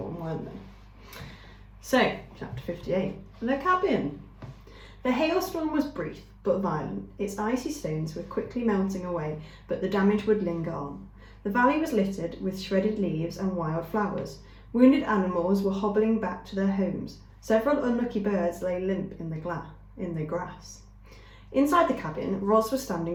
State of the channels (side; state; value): both; identical; correlation 1.00